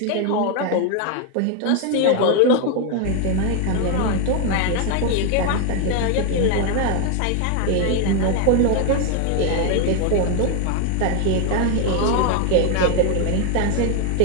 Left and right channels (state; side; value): different; both; correlation 0.00